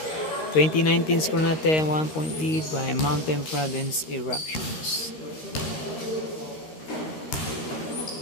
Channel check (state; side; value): late; right; 13 ms